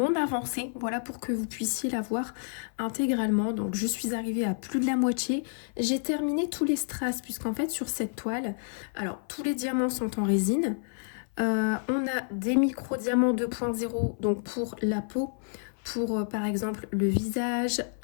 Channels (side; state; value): right; silent; 55 dB below the other